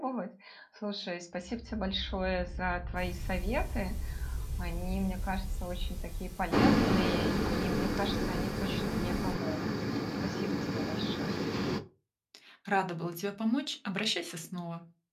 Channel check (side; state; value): both; identical; correlation 1.00